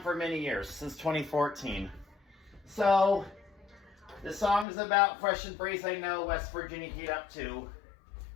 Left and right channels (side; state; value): right; drops out; at 4.7 s